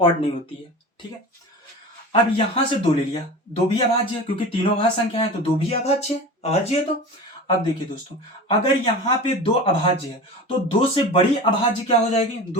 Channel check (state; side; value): normal; both; correlation 0.32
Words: नहीं होती है। ठीक है, अब यहां से 2 ले लिया, 2 भी अभाज्य है, क्योंकि तीनों अभाज्य संख्या है तो 2 भी अभाज्य है, अभाज्य है। तो अब देखिए दोस्तों, अगर यहाँ पे 2 अभाज्य है तो 2 से बड़ी अभाज्य क्या हो जाएगी?